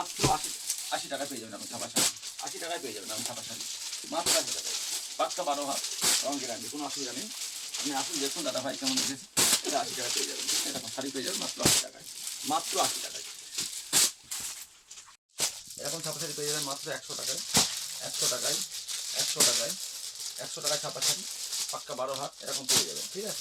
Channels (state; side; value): identical; both; correlation 1.00